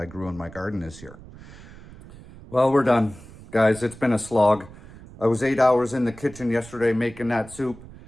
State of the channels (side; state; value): right; noise; rumble, 18 dB below the sound